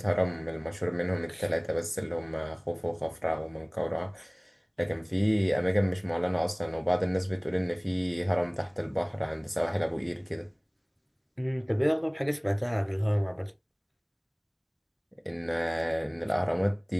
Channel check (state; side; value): identical; both; correlation 1.00